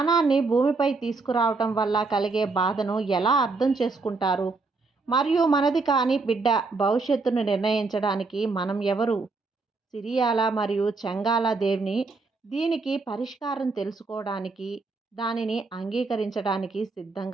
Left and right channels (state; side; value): quieter; left; 3.9 dB